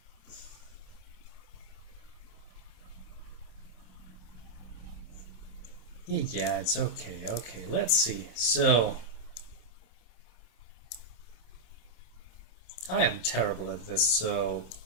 Yeah, it's okay. Okay, let's see. So, I am terrible at this, so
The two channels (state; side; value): late; right; 27 ms